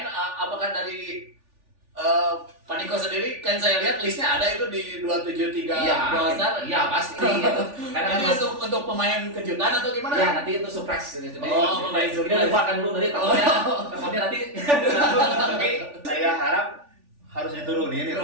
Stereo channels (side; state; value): left; late; 3.4 ms